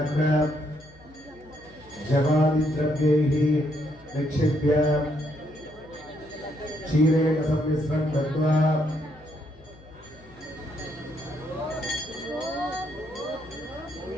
जवादिद्रव्यैः निक्षिप्य क्षीरेण सम्मिश्रं कृत्वा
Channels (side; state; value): left; noise; hum, 23 dB below the sound